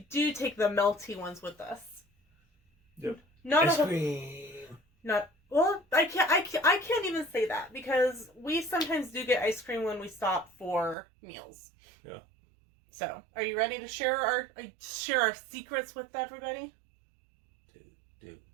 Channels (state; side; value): drops out; left; at 11.0 s